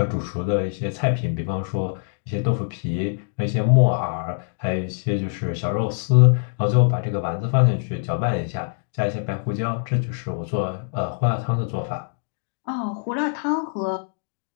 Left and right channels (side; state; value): right; silent; digital silence